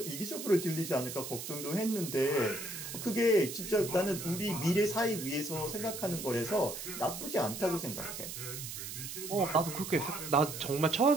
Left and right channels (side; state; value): right; noise; hiss, 8 dB below the sound